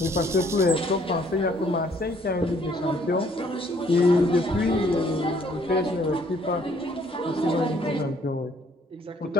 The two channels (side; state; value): both; normal; correlation 0.63